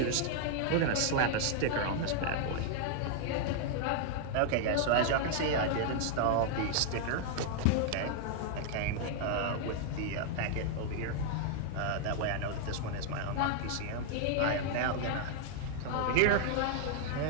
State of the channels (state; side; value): different; both; correlation 0.00